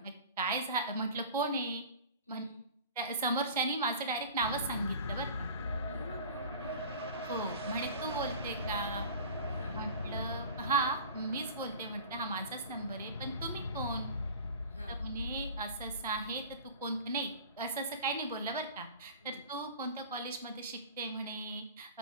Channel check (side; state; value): both; inverted; correlation -0.40